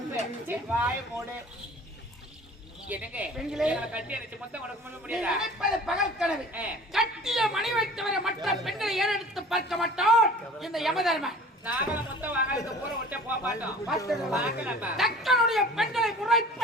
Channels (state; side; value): normal; both; correlation 0.45